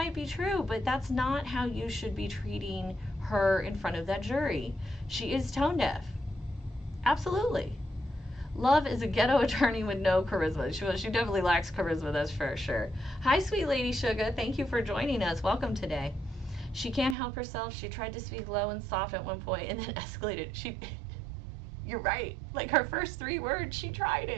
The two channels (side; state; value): left; drops out; at 17.2 s